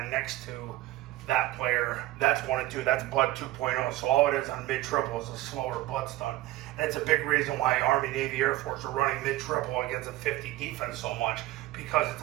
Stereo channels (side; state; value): left; quieter; 16.6 dB